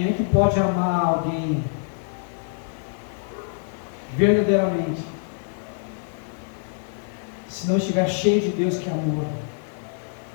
é que pode amar alguém verdadeiramente, se não estiver cheio de Deus que é amor?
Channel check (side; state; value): right; silent; digital silence